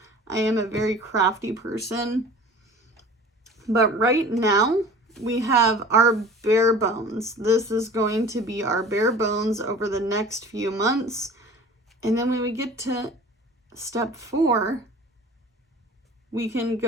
I am a very crafty person. But right now, we have our bare bones. This is going to be our bare bones over the next few months. And then when we get to step 4, we can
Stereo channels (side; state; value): both; normal; correlation 0.43